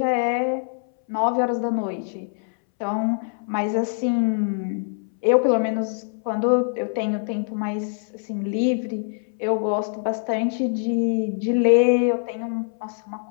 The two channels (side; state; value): right; silent; 63 dB below the other